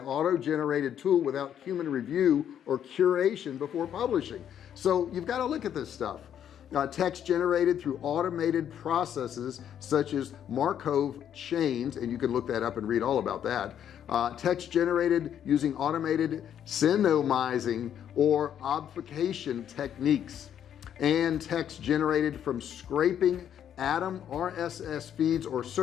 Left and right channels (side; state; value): right; quieter; 9.5 dB